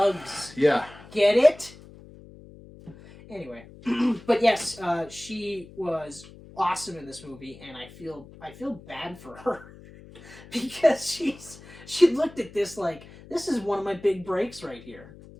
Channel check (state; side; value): noise; left; hum, 20 dB below the sound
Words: Yeah. Get it? Anyway, but yes, she was awesome in this movie, and I feel bad for her because she looked at this this is one of my big breaks right here.